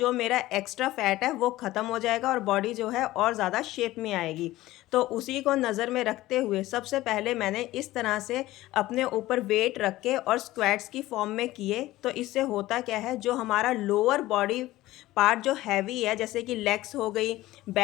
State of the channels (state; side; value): quieter; right; 16.8 dB